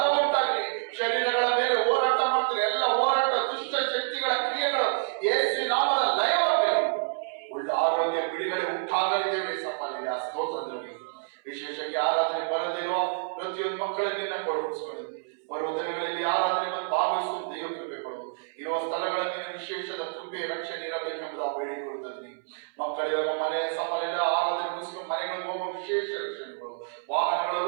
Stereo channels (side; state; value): left; silent; 59 dB below the other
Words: ಉಂಟಾಗಲಿ. ಶರೀರಗಳ ಮೇಲೆ ಹೋರಾಟ ಮಾಡ್ತಾರೆ, ಎಲ್ಲ ಹೋರಾಟ, ದುಷ್ಟ ಶಕ್ತಿಗಳ ಕ್ರಿಯೆಗಳು ಯೇಸು ನಾಮದ ಲಯವಾಗಲಿ. ಉಳ್ಳ ಆರೋಗ್ಯ, ಬಿಡುಗಡೆ ಉಂಟಾಗಲಿದ್ದೇವೆ ಸಫಲಿದೆ. ಆ ಸ್ತೋತ್ರದಲ್ಲಿ ವಿಶೇಷವಾಗಿ ಆರಾಧನೆ ಬರದಿರೋ ಪ್ರತಿಯೊಂದು ಮಕ್ಕಳನ್ನು ನಿನ್ನ ಕೊಡಿಸ್ಕೊಳ್ಳಿ. ಬರುವ ದಿನಗಳಲ್ಲಿ ಆರಾಧನೆ ಭಾಗವಹಿಸುವ ದೇವ ಕೃಪೆ ಕೊಡು. ಇರುವ ಸ್ಥಳಗಳಲ್ಲಿ ವಿಶೇಷದ ಕೃಪೆ, ರಕ್ಷಣೆ ಇರಬೇಕೆಂಬುದು ಬೇಡಿಕೊಳ್ಳುತ್ತದೆ. ಮಕ್ಕಳಿಗೆ ಮನೆ ಸಫಲ ಆರಾಧನೆ ಮುಗಿಸ್ಕೊಂಡು ಮನೆಗಳಿಗೆ ಹೋಗುವ ವಿಶೇಷ ರಕ್ಷಣೆ ಕೊಡು. ವಾಹನಗಳಲ್ಲಿ